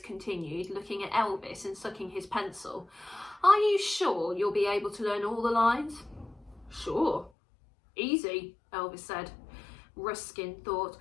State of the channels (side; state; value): right; drops out; at 7.3 s